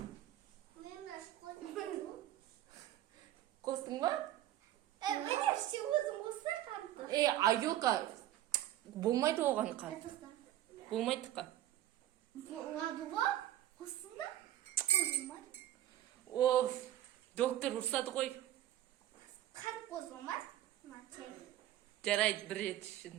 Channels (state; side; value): quieter; left; 13.2 dB